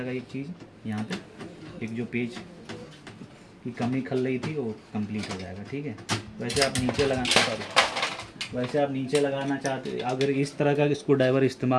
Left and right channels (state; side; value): identical; both; correlation 1.00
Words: एक चीज़। यहाँ पे एक जो पेज की कमी खल रही थी वो कंप्लीट हो जाएगा, ठीक है। वैसे आप नीचे लगाना चाहते, अगर इस तरह का स्क्रू ड्राइवर